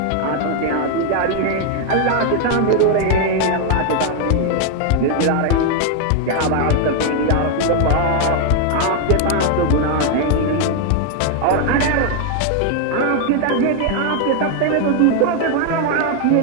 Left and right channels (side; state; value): both; different; correlation 0.00